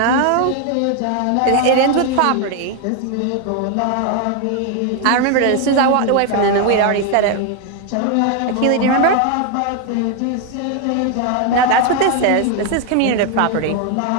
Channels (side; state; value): both; different; correlation 0.01